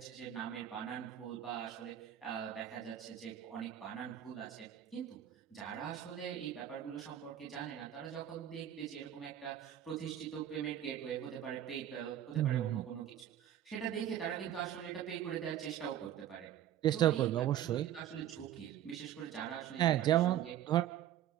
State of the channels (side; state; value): left; quieter; 11.2 dB